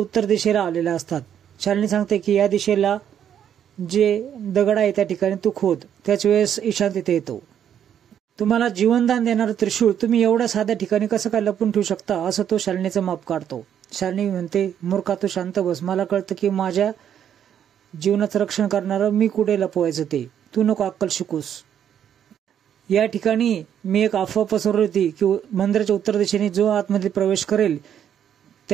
उत्तर दिशेला आलेल्या असतात। शालिनी सांगते की या दिशेला जे दगड आहे त्या ठिकाणी तू खोद। त्याच वेळेस ईशान तिथे येतो। तुम्हाला जीवनदान देणारं त्रिशूळ तुम्ही एवढ्या साध्या ठिकाणी कसं काय लपून ठेवू शकता असं तो शालिनीचं माप काढतो। शालिनी म्हणते, मूर्खा तू शांत बस, मला कळतं की माझ्या जीवनाचं रक्षण करणारं मी कुठे लपवायचं ते, तू नको अक्कल शिकूस। या ठिकाणी मी एक अफवा पसरवली होती की मंदिराच्या उत्तर दिशेने जो आतमध्ये प्रवेश करेल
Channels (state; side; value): quieter; left; 9.3 dB